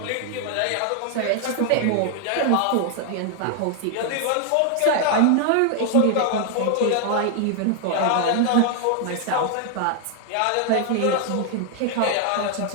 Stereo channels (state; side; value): different; both; correlation 0.00